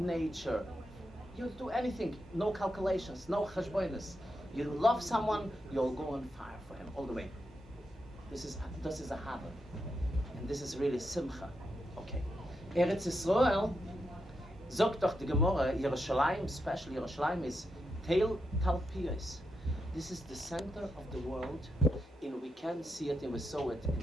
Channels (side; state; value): both; normal; correlation 0.84